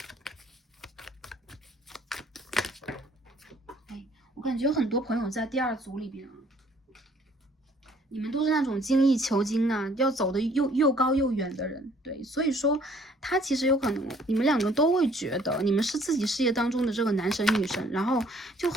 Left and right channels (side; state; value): both; normal; correlation 0.60